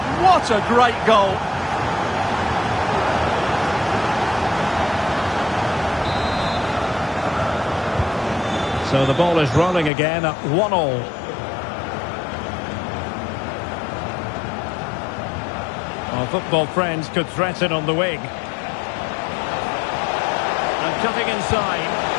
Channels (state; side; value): drops out; right; at 9.9 s